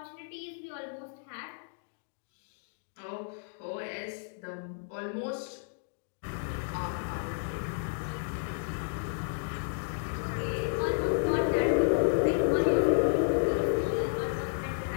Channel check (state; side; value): silent; right; digital silence